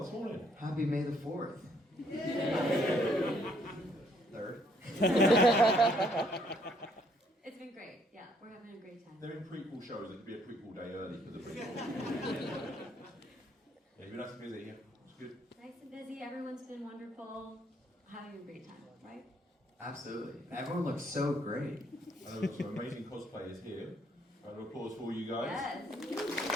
morning? Happy May the 4th. Third. It's been great. Yeah, we're having a great time. They're in prequel shows. It could be a prequel day early for the prequel. Yeah, you've been nice and busy. Yeah, it's good. Nice and busy. Everyone's been wonderful. Having a great time, right? Absolutely. Everyone looks so great. And there are some amazing cosplayers here. Round of applause for all you guys. Yes.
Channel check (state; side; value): normal; both; correlation 0.67